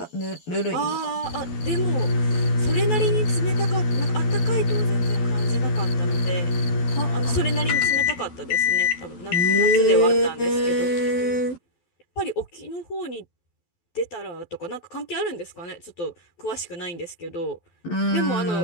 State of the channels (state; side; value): late; right; 12 ms